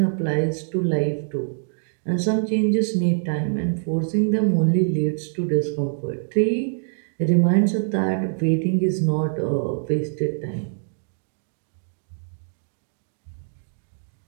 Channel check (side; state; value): left; silent; digital silence